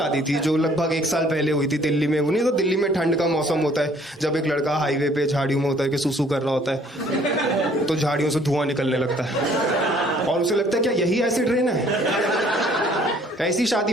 थी जो लगभग 1 साल पहले हुई थी दिल्ली में। वो नहीं तो दिल्ली में ठंड का मौसम होता है, जब एक लड़का हाईवे पे झाड़ियों में होता है कि सुसु कर रहा होता है, तो झाड़ियों से धुआं निकलने लगता है और उसे लगता है क्या यही एसिड रेन है। ऐसी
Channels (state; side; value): normal; both; correlation 0.59